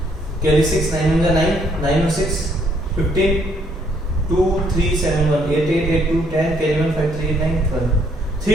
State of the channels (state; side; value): normal; both; correlation 0.68